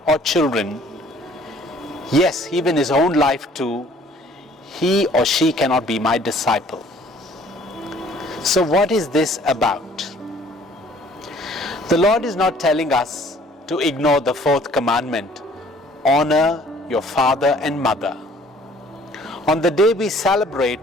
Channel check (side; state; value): both; normal; correlation 0.56